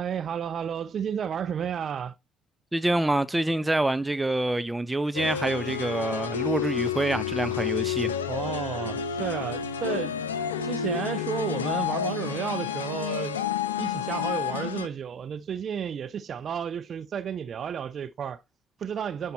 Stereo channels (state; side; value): normal; both; correlation 0.48